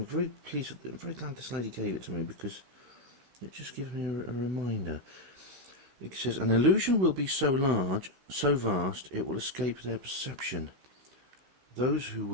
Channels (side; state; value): left; late; 15 ms